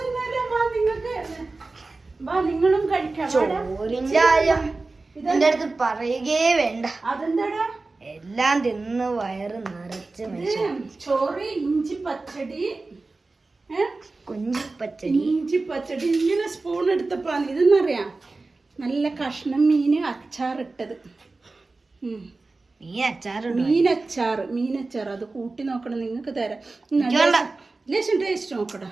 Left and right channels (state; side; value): quieter; left; 3.5 dB